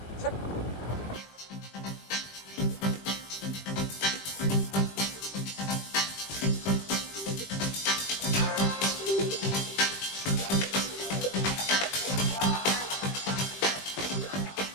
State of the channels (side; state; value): right; late; 20 ms